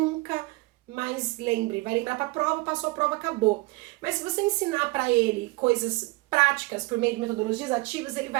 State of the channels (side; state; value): left; quieter; 23.8 dB